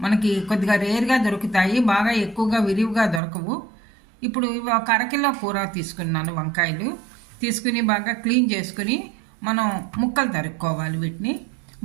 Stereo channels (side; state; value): left; drops out; at 3.2 s